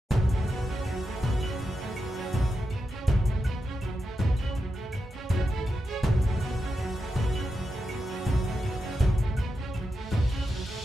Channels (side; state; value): both; normal; correlation 0.88